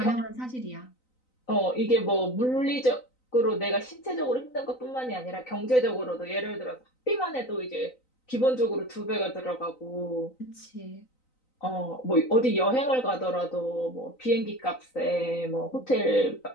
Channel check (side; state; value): right; late; 3.9 ms